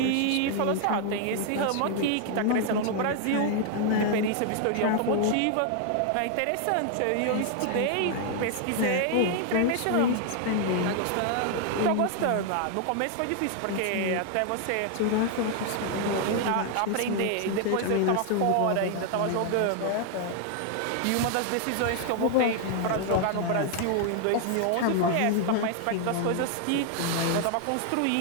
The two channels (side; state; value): both; different; correlation 0.00